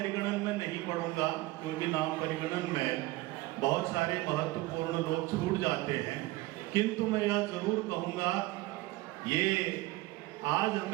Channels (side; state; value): left; quieter; 19.5 dB